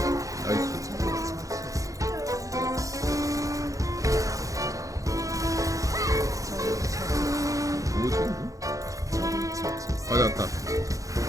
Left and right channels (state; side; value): late; left; 0.16 ms